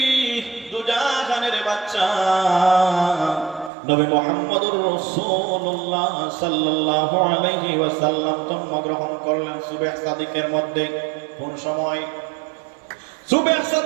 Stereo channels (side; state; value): left; drops out; at 3.7 s